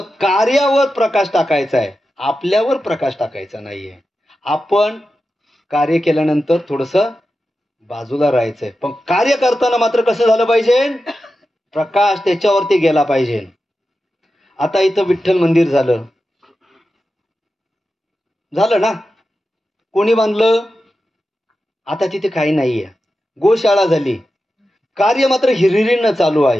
कार्यावर प्रकाश टाकायचा आहे, आपल्यावर प्रकाश टाकायचा नाहीये. आपण कार्य केल्यानंतर थोडंसं बाजूला राहायचंय. पण कार्य करताना मात्र कसं झालं पाहिजे, प्रकाश त्याच्यावरती गेला पाहिजे. आता इथं विठ्ठल मंदिर झालं ना, कोणी बांधलं, आता तिथे काही नाहीये. गोशाळा झाली, कार्य मात्र हिरिरीनं चालू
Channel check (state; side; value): normal; both; correlation 0.91